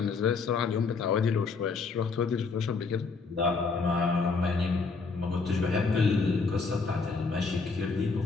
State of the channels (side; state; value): right; quieter; 4.5 dB